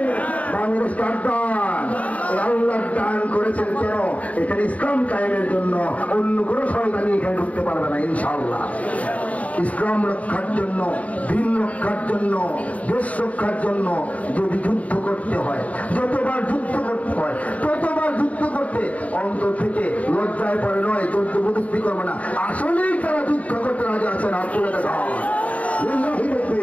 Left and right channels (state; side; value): late; right; 0.069 ms